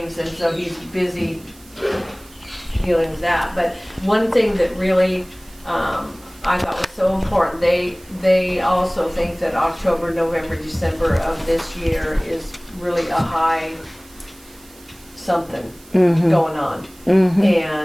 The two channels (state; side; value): noise; right; hiss, 25 dB below the sound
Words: and so he's busy dealing with that. But one thing that really I thought was so important, they also think that October, November, December of this year is really a high something going on.